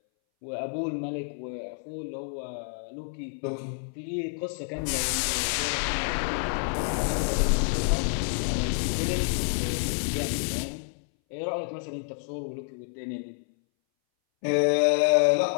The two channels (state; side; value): silent; right; 59 dB below the other